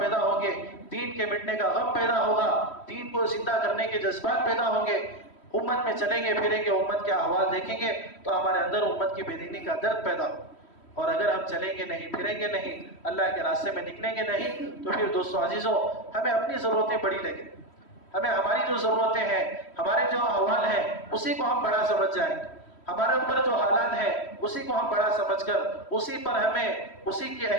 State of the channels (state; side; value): late; right; 3.1 ms